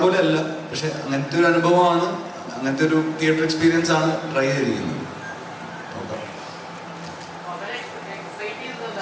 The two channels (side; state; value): both; identical; correlation 1.00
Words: പോലെ അല്ല, പക്ഷെ അങ്ങനത്തെ ഒരു അനുഭവമാണ്, അങ്ങനത്തെ ഒരു തിയേറ്റർ എക്സ്പീരിയൻസ് ആണ് ട്രൈ ചെയ്തിരിക്കുന്നത്.